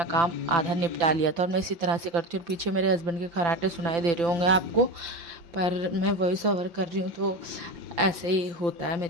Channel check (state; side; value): late; left; 5.9 ms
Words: काम आधा निपटा लिया था और मैं इसी तरह से करती हूँ। और पीछे मेरे हस्बैंड के खराटे सुनाई दे रहे होंगे आपको, पर मैं वॉइस ओवर कर रही हूँ तो ऐसे ही होता है